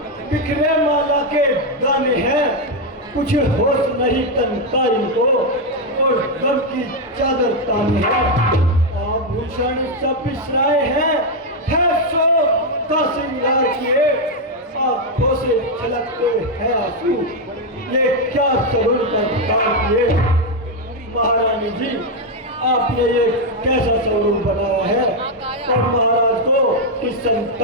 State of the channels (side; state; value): both; normal; correlation 0.02